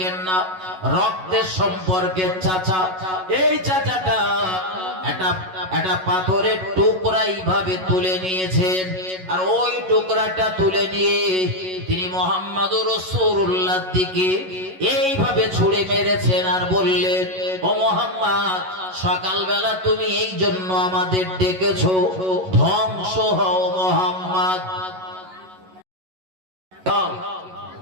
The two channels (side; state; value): left; late; 11 ms